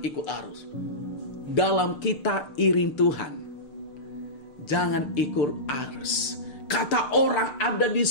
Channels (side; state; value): right; late; 6.6 ms